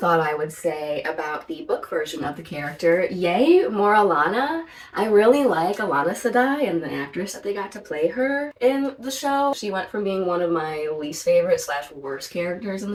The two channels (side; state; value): both; identical; correlation 1.00